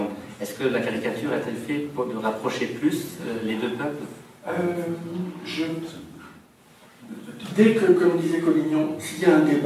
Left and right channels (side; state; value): both; identical; correlation 1.00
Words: Est-ce que la caricature a-t-elle fait pour de rapprocher plus les deux peuples? Dès que, comme disait Collignon, s'il y a un